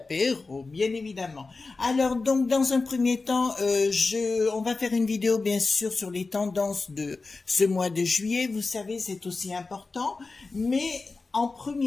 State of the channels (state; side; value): quieter; right; 3.8 dB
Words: bien évidemment. Alors donc dans un premier temps, on va faire une vidéo bien sûr sur les tendances de ce mois de juillet. Vous savez, c'est aussi important, mais en